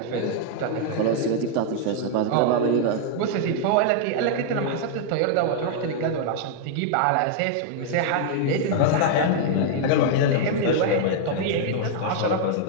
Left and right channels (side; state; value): both; different; correlation 0.00